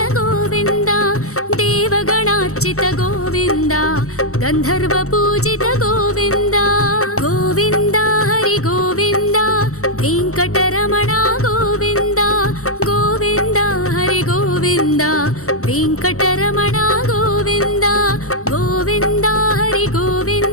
गोविन्द देवगणार्चित गोविन्द गन्धर्वपूजित गोविन्द गोविन्द हरि गोविन्द वेङ्कटरमणा गोविन्द गोविन्द हरि गोविन्द वेङ्कटरमणा गोविन्द गोविन्द हरि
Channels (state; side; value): late; right; 0.64 ms